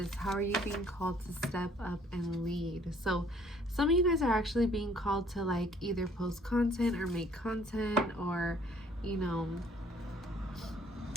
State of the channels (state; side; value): normal; both; correlation 0.59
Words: how are you being called to step up and lead? So some of you guys are actually being called to like either post content or make content, or you know,